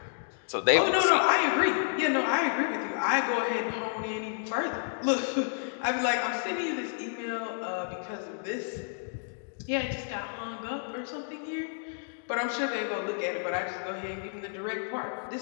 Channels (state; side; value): silent; right; digital silence